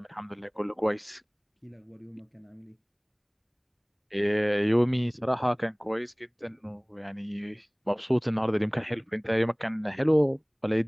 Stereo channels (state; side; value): identical; both; correlation 1.00